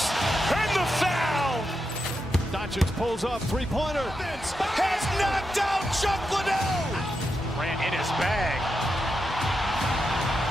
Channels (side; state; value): both; normal; correlation 0.86